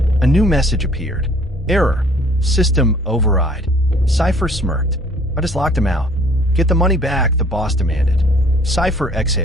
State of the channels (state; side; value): normal; both; correlation 0.57